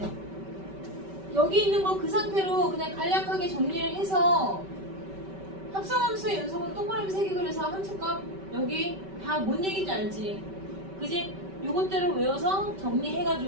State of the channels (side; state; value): left; late; 5.2 ms